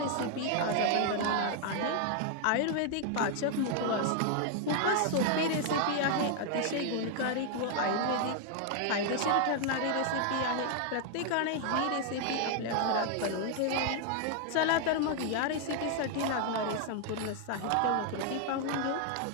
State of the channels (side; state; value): both; different; correlation 0.00